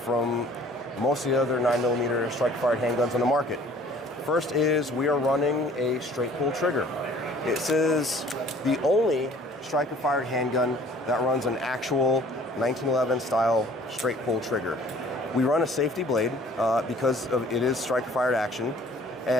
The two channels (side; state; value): both; normal; correlation 0.53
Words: most of the other 9mm striker-fired handguns on the market. First is we are running a straight pull trigger. This is the only striker-fired handgun that runs an actual 1911 style straight pull trigger. We run a safety blade because it is striker-fired action,